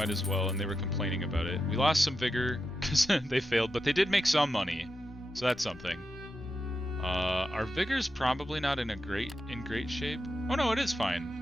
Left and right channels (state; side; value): normal; both; correlation 0.88